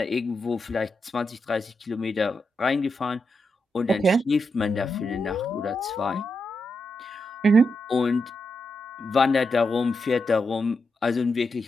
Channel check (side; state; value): both; normal; correlation 0.85